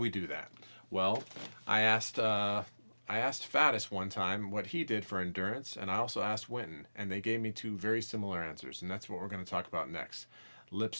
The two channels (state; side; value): inverted; both; correlation -1.00